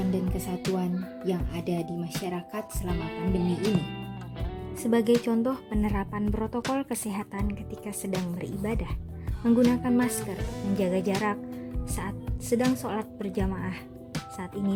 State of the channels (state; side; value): identical; both; correlation 1.00